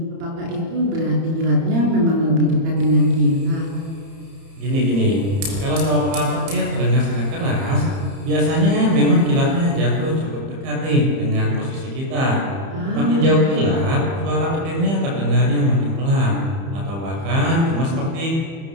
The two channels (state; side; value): late; left; 30 ms